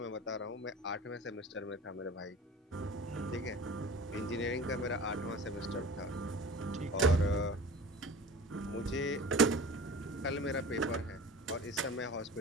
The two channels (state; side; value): normal; both; correlation 0.38